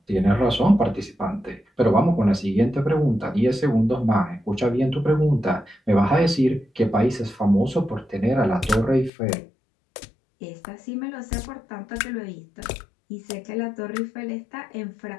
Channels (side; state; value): right; drops out; at 9.1 s